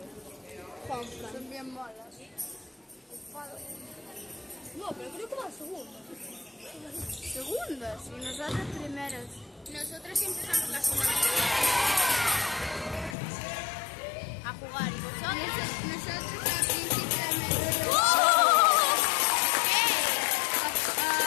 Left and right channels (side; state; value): right; drops out; at 13.2 s